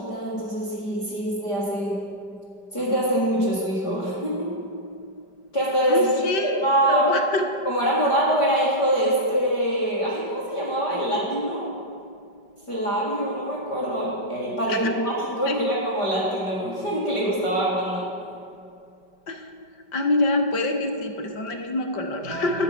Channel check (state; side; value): late; right; 5.1 ms